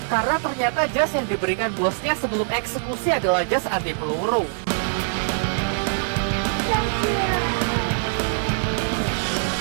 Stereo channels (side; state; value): left; silent; digital silence